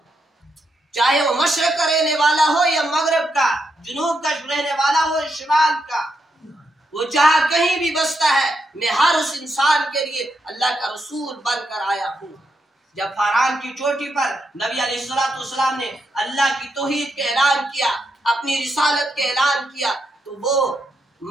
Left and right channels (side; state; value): both; normal; correlation 0.82